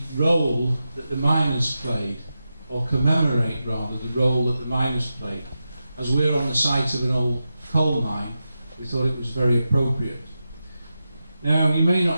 role that the miners played, or commemorate rather the role that the miners played. As we're on the site of an old coal mine, we thought it was very appropriate. Now, you may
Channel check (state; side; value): inverted; both; correlation -0.91